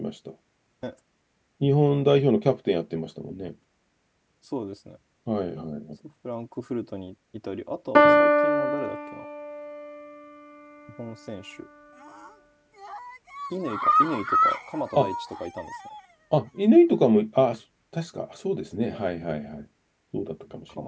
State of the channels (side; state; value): both; identical; correlation 1.00